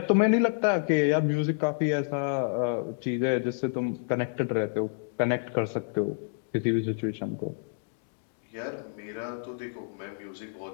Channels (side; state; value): right; silent; digital silence